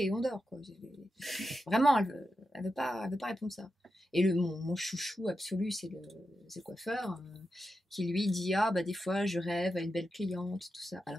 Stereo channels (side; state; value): both; normal; correlation 0.89